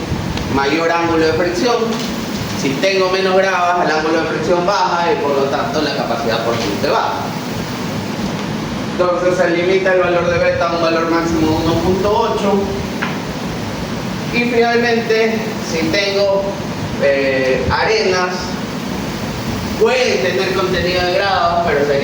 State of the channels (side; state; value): both; identical; correlation 1.00